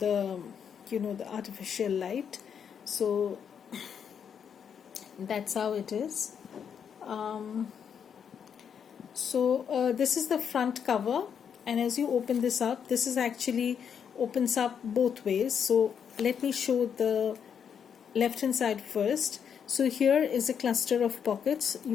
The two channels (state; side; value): quieter; right; 7.6 dB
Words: the artificial light. So that's how it is. This is the front cover, and as you open this up, this is actually opens up both ways. So let me show the left hand side first. So here is a cluster of pockets.